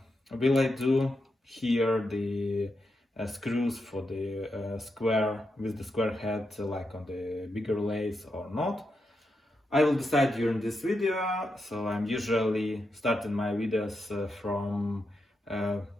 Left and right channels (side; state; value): both; normal; correlation 0.85